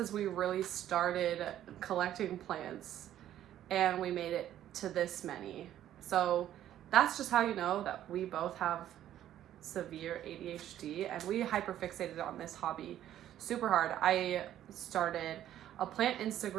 we really started collecting plants and we made it to this many. So that's just how you know that we both have severe ADHD and we hyperfixated on this hobby super hard. I started a plant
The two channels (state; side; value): quieter; left; 11.8 dB